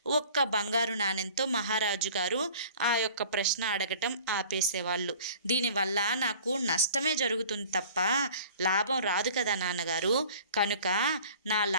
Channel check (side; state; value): both; inverted; correlation -0.47